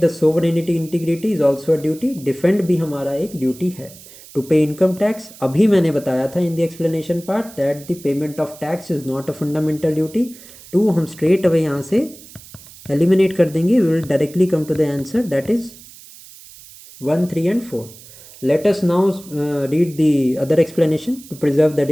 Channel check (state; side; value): noise; right; hiss, 20 dB below the sound